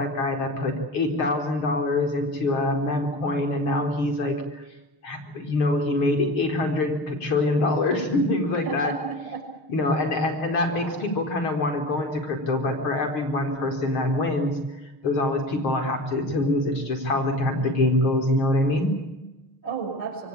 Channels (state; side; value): late; right; 6.5 ms